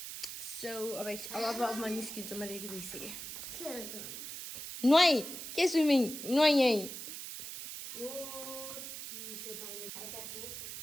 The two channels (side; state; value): right; noise; hiss, 8 dB below the sound